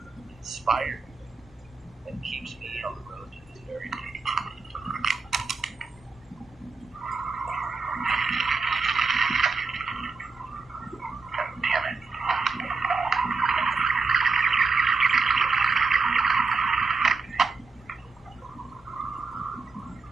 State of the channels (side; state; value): left; quieter; 4.3 dB